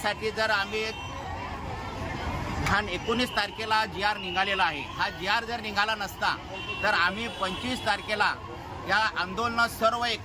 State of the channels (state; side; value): identical; both; correlation 1.00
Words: जर आम्ही 19 तारखेला GR निघालेला आहे, हा GR जर निघाला नसता तर आम्ही 25 तारखेला या आंदोलन सर्व